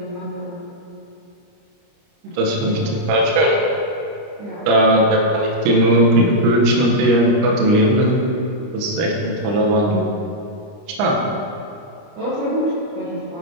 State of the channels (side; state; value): left; late; 29 ms